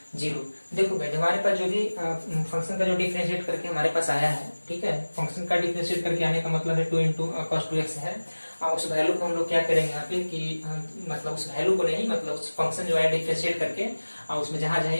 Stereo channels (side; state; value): both; inverted; correlation -1.00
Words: 0। देखो भाई हमारे पास जो भी फंक्शन का जो डिफरेंशिएट करके हमारे पास आया है, ठीक है, फंक्शन का डिफरेंशिएट करके आने का मतलब है 2 इंटू cos 2x है। उस वैल्यू को हम लोग क्या करेंगे यहाँ पे कि मतलब उस वैल्यू को नहीं, मतलब उस फंक्शन जो है डिफरेंशिएट करके उसमें जहां जहां